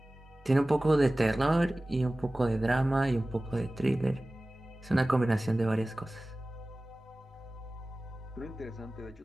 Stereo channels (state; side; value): normal; both; correlation 0.98